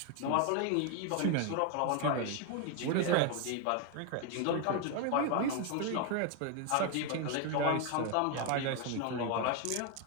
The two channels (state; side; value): different; both; correlation 0.01